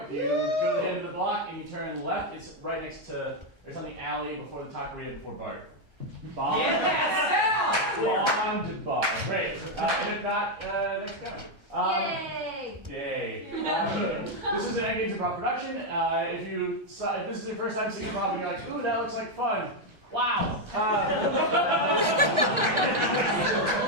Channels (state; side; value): late; left; 1.3 ms